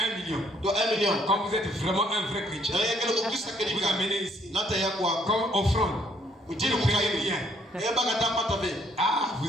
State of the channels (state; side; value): normal; both; correlation 0.66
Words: million. Quand vous êtes vraiment un vrai chrétien, vous amenez ici comme offrande. Vous ne payez rien. Ah,